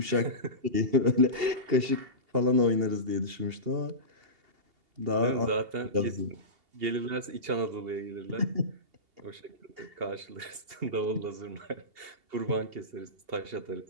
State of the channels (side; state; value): left; late; 2.8 ms